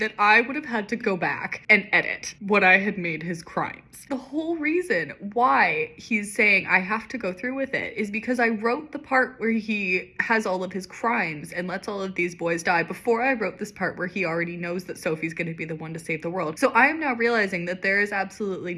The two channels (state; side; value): identical; both; correlation 1.00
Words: I would have had to go back and edit what I had made his crimes. The whole reason why he's saying I have to go through with it is because I wrote the part where he has all of his crimes and lets all of these boys die before I wrote this part where he already knows that Sophie's going to be the one to save the world. So I am now realizing that there is absolutely